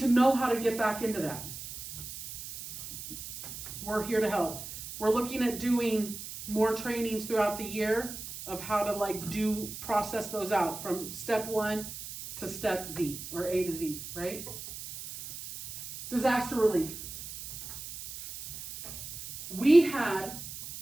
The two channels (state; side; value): noise; right; hiss, 10 dB below the sound